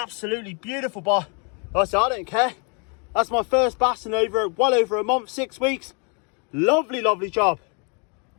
beautiful, but like I said, I don't care. That's my first bass in well over a month, 6 weeks. Lovely, lovely job.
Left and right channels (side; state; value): right; quieter; 35.8 dB